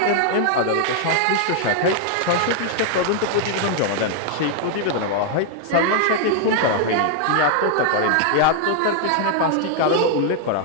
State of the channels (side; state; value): both; different; correlation 0.00